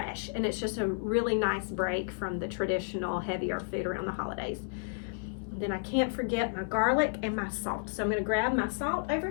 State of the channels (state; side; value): silent; right; 57 dB below the other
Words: and it's just a really nice break from the traditional heavier food around the holidays. And then I can't forget my garlic and my salt, so I'm going to grab my salt over